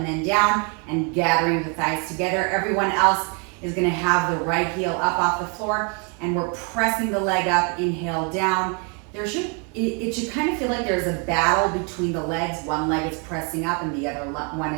then down and gathering the thighs together. Everyone else is gonna have the right heel up off the floor, and we're pressing the leg up, inhale down. It should kind of feel like there's a battle between the legs. One leg is pressing up and the other one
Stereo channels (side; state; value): left; quieter; 36.4 dB